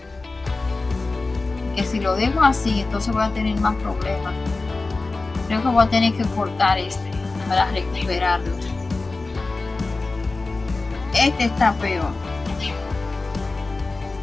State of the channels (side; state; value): right; quieter; 3.5 dB